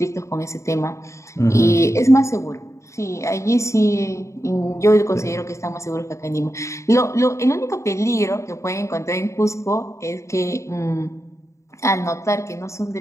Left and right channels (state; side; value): late; right; 0.14 ms